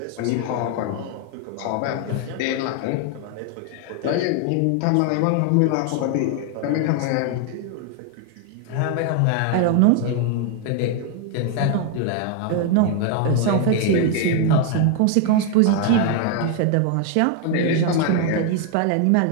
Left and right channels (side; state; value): both; different; correlation 0.00